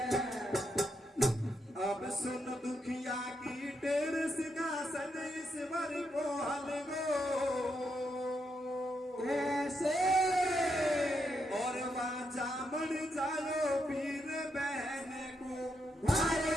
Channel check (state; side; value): normal; both; correlation 0.81